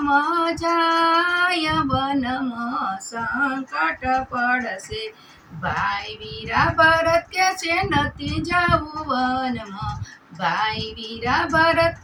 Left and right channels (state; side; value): identical; both; correlation 1.00